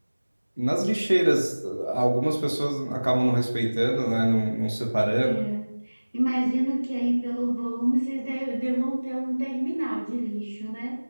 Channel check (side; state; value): both; inverted; correlation -1.00